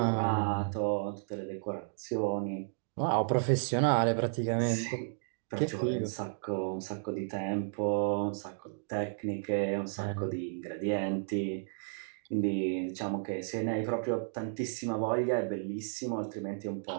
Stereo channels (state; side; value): silent; left; digital silence